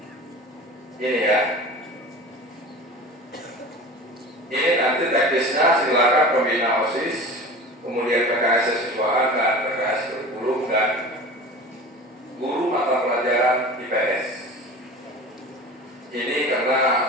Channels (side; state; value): both; normal; correlation 0.36